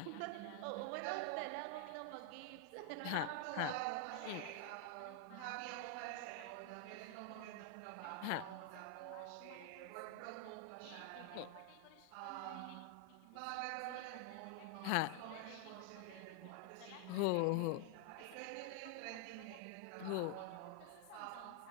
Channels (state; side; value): different; both; correlation 0.00